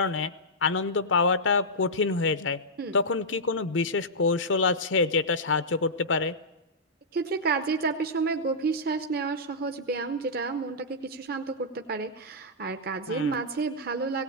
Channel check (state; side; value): normal; both; correlation -0.11